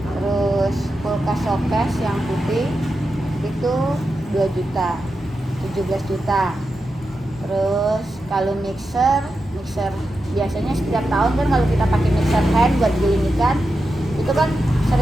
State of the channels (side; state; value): both; normal; correlation 0.89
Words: Terus kulkas showcase yang putih itu 2 juta, 17 juta. Terus kalau mixer biasanya setiap tahun kan kalau kita pakai mixer hand buat giling ikan itu kan